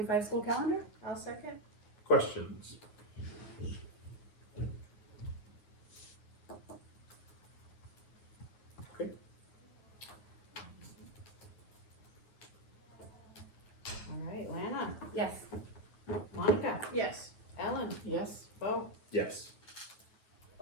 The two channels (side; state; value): right; late; 9.5 ms